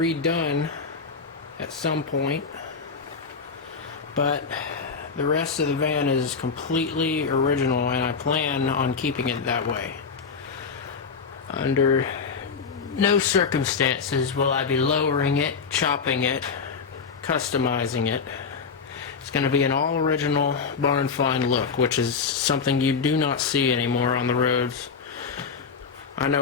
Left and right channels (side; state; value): right; quieter; 5.4 dB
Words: at some point, but the rest of the van is completely original and I plan on keeping it that way. Under no circumstances will I be lowering it, chopping it, customizing it. It's going to be an all original barn find look, which is something you do not see anymore on the roads. I